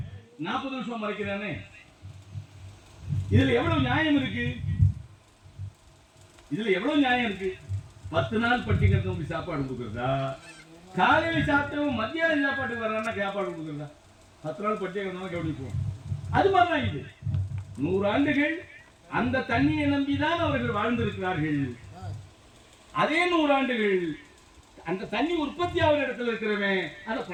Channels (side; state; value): both; identical; correlation 1.00